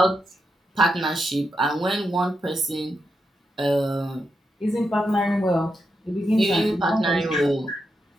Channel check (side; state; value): both; normal; correlation 0.85